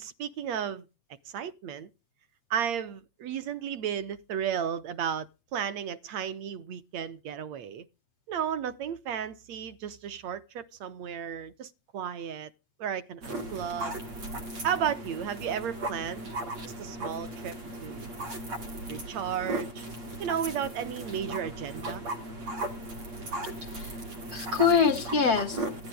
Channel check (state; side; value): late; left; 8.5 ms